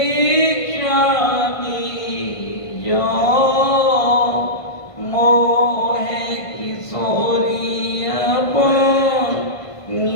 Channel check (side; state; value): right; late; 1.5 ms